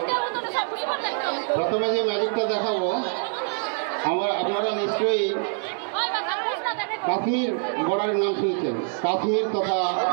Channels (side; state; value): left; silent; 57 dB below the other